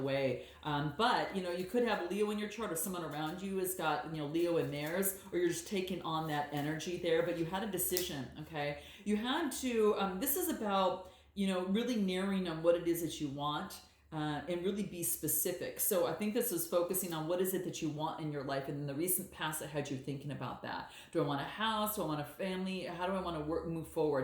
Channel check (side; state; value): both; identical; correlation 1.00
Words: way. But you could have Leo in your chart, or someone around you has got Leo in theirs, or you're just taking on that energy there. But you had a decision, okay? You had to. This is about really narrowing on what it is that you want. And really be specific. So I think this is focusing on what is it that you want in your life, and in the recent past that had you thinking about that. Do I want a house? Do I want a family? How do I want to move